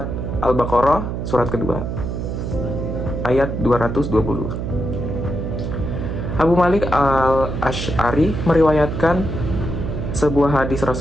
Al-Baqarah surat kedua ayat 220. Abu Malik Al-Asy'ari meriwayatkan sebuah hadis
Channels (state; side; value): noise; right; hum, 4 dB below the sound